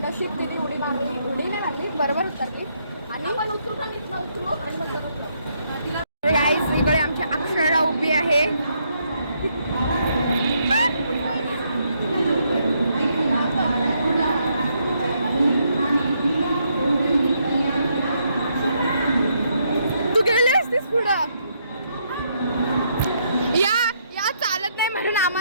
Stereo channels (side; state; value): both; inverted; correlation -0.75